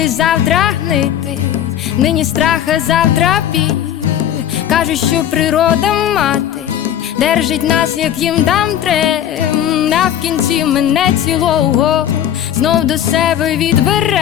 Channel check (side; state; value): right; quieter; 10.6 dB